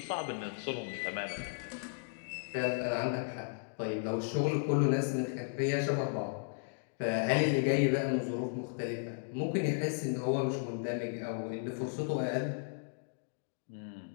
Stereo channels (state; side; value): silent; right; digital silence